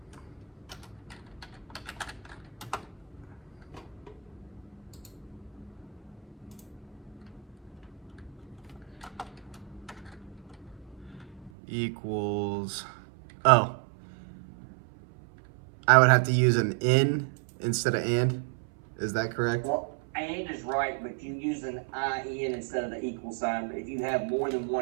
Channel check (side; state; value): left; drops out; at 11.5 s